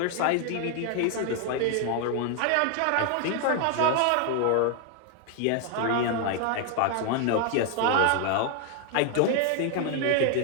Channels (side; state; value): both; different; correlation 0.00